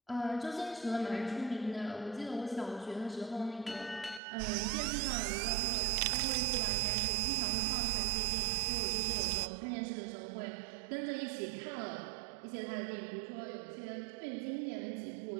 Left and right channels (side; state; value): left; drops out; at 4.2 s